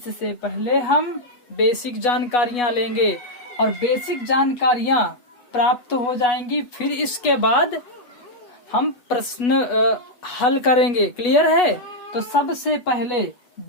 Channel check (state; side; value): late; right; 8.2 ms